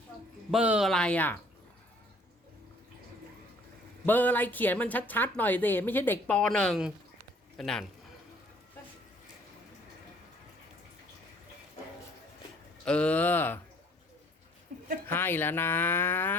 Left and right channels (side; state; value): both; normal; correlation 0.58